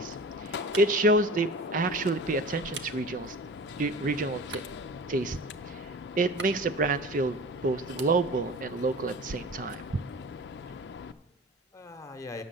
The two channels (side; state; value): both; normal; correlation 0.38